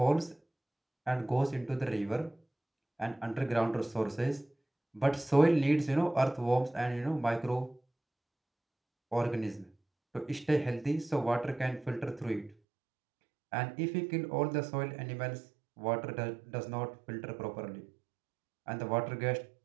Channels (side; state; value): left; drops out; at 12.6 s